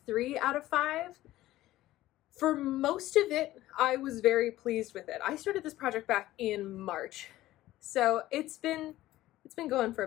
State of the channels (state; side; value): quieter; right; 15.5 dB